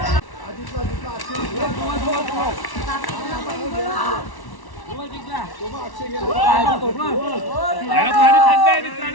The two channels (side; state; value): right; late; 1.1 ms